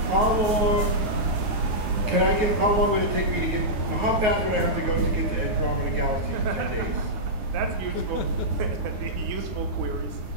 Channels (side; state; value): left; late; 9.8 ms